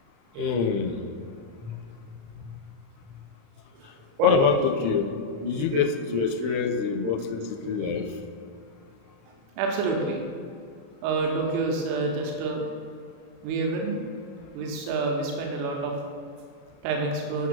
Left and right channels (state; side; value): late; left; 36 ms